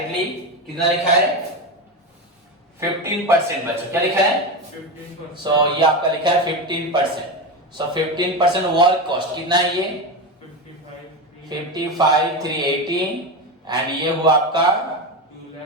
कितना लिखा है 15%. बच्चों क्या लिखा है 15%. सो ये आपका लिखा है 15%. सो 15% वर्क कॉस्ट कितना है ये 55,300. 55,380. एंड ये हुआ आपका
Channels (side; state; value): both; normal; correlation 0.17